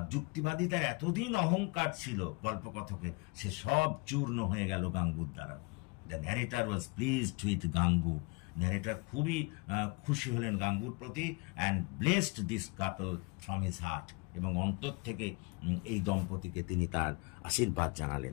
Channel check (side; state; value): right; quieter; 28.1 dB